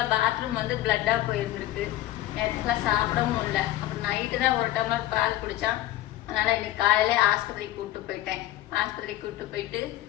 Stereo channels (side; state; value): right; quieter; 14.7 dB